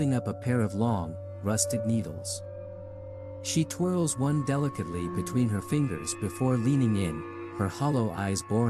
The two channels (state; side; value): identical; both; correlation 1.00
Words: up a pair of long, rusted needles. She twirls one delicately between her fingers before leaning in, her hollow eyes